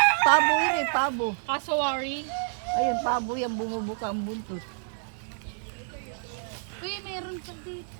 yun eh, pabo. Kasawari. Ayun, pabo yan, bumubuka ang buntot. Uy, meron pa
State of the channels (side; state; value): left; silent; digital silence